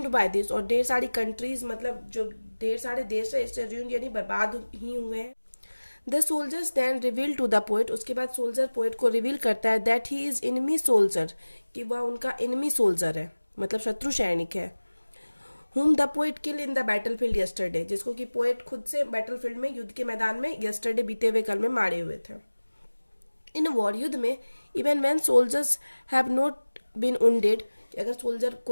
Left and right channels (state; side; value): inverted; both; correlation -1.00